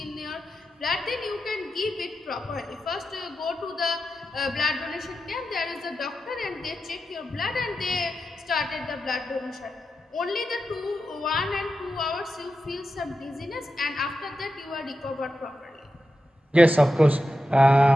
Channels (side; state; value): both; normal; correlation 0.90